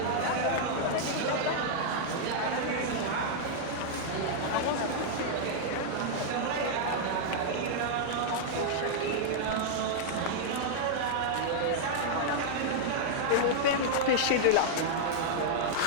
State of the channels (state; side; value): different; both; correlation -0.01